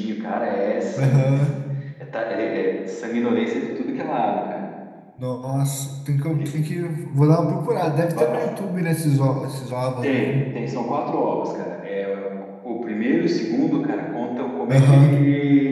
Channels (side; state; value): both; identical; correlation 1.00